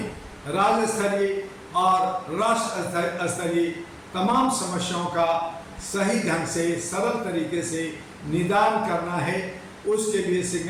राज्य स्तरीय और राष्ट्र स्तरीय तमाम समस्याओं का सही ढंग से सरल तरीके से निदान करना है। उसके लिए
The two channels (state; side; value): identical; both; correlation 1.00